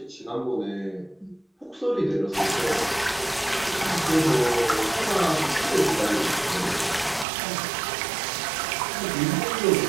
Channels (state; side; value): drops out; left; at 7.2 s